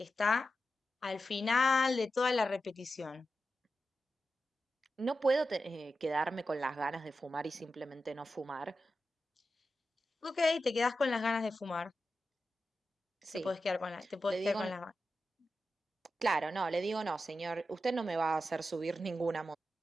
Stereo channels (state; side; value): normal; both; correlation 0.90